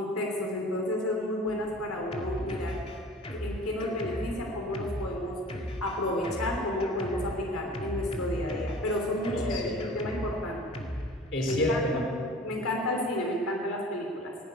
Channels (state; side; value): normal; both; correlation 0.43